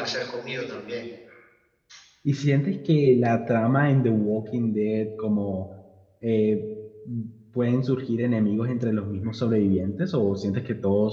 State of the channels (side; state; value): both; identical; correlation 1.00